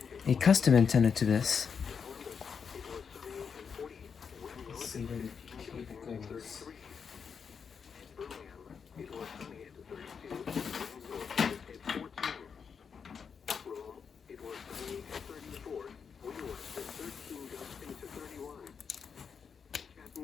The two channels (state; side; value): quieter; right; 6.4 dB